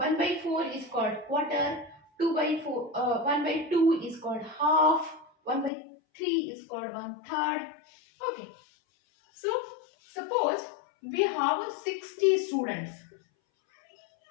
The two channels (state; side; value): drops out; right; at 5.7 s